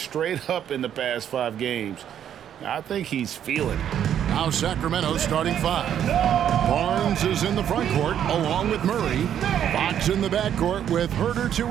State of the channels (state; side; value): quieter; left; 9.8 dB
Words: up in the past 5 games. I think he's feeling it. Now Sacramento starting 5. Barnes is in the front court along with Murray. Fox in the backcourt with Herter to